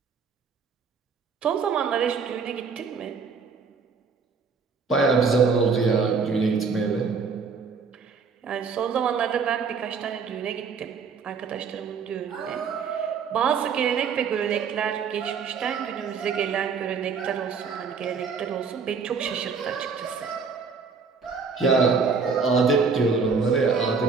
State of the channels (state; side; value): quieter; left; 5.3 dB